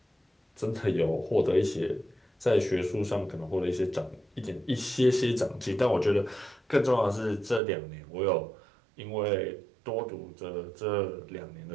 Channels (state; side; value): drops out; left; at 7.6 s